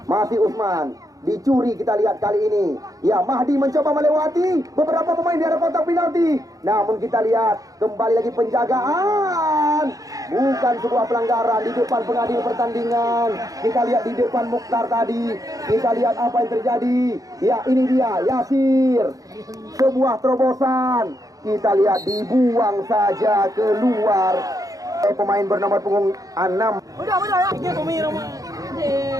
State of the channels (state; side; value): late; left; 0.17 ms